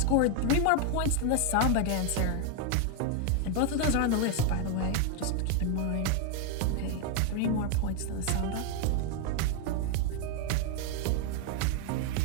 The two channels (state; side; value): different; both; correlation 0.01